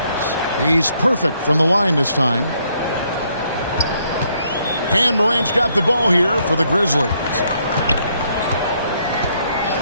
He's perfect from the line this time. And Morant's got the ball here for the Grizzlies.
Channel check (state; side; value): inverted; both; correlation -0.71